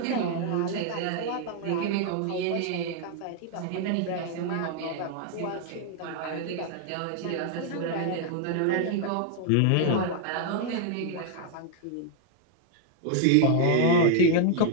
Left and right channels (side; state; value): both; different; correlation 0.00